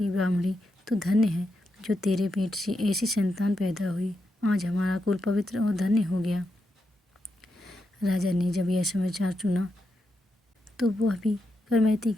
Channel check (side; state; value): both; normal; correlation 0.85